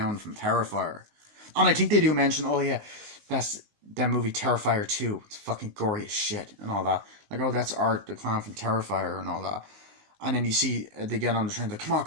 from Terrifier. And I think they do mention, oh yeah, that's that movie Terrifier 2. It's fucking gory as shit and all that. Like, oh, that's Art, the clown from Terrifier and all that. And then you see they get on the train, like,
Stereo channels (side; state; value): left; late; 19 ms